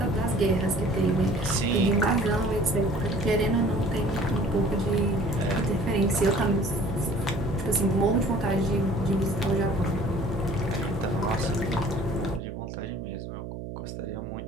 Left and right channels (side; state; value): right; noise; hum, 9 dB below the sound